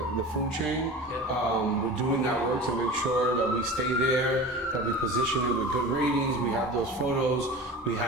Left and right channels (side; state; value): both; normal; correlation 0.34